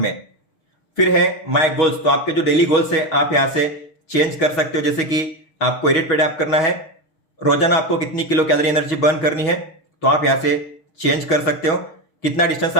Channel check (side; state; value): right; late; 6.3 ms